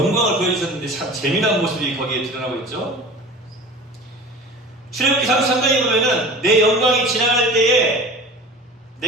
보여주셨는데 참 재미난 모습이 거기에 드러나고 있죠. 출애굽기 33장에 보면은 내 영광이 지나갈 때에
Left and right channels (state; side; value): normal; both; correlation 0.38